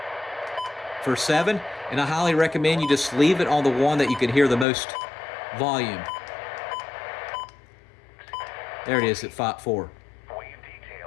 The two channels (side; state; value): right; drops out; at 4.7 s